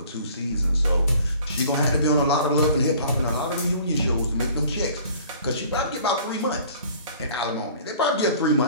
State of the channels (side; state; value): both; inverted; correlation -0.50